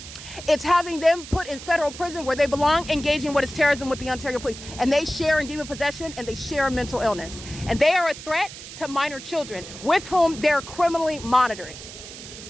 It's having them put in federal prison where they belong, engaging what is terrorism with the Ontario police. And they share in demon possession, and they share in mental illness. And they are a threat to minor children with whom they're criminally monitoring.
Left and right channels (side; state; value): right; noise; hiss, 13 dB below the sound